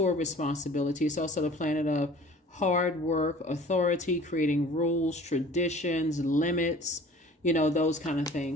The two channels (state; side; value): normal; both; correlation 0.47